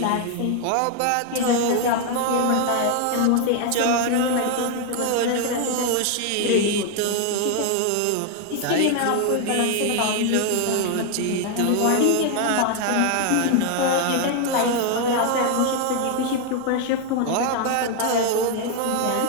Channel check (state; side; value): different; both; correlation 0.00